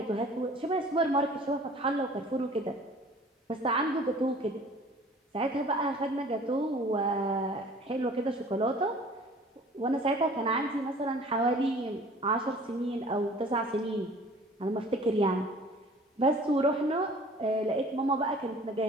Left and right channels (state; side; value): normal; both; correlation 0.49